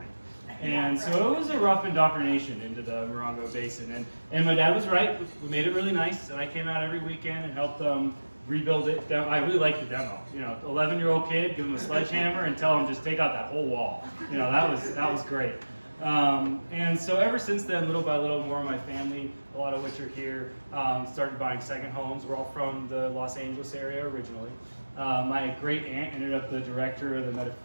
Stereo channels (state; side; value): inverted; both; correlation -1.00